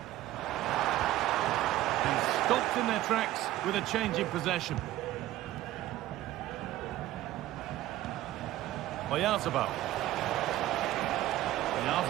And stopped in their tracks with a change in possession. Oyarzabal.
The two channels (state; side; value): quieter; left; 14.9 dB